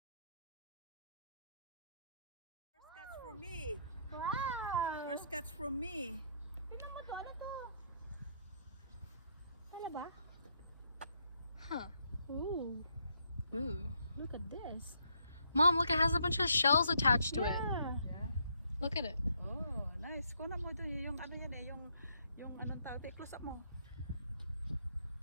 First catch from me. Wow. First catch from me. Tignan mo to. Ano to? Ano ba? Huh. Ooh. Ooh. Look at this. Mom, look, it has a bunch of shells attached to it. Yeah. Look at it. Oh, nice. Kunan mo doon yung ano yan eh, yung anong tawag, close up mo.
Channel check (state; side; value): inverted; both; correlation -0.72